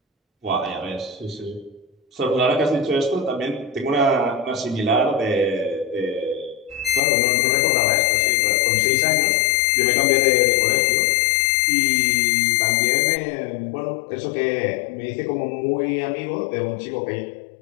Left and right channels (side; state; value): right; drops out; at 7.0 s